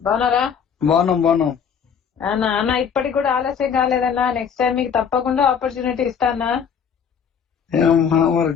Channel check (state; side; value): quieter; right; 7.1 dB